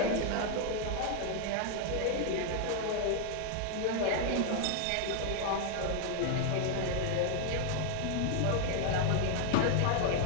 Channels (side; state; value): both; different; correlation 0.00